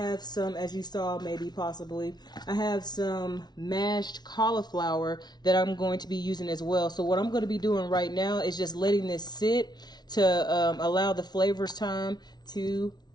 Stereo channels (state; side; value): late; right; 0.20 ms